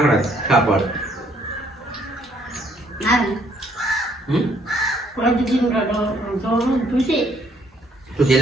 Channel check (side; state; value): both; normal; correlation 0.66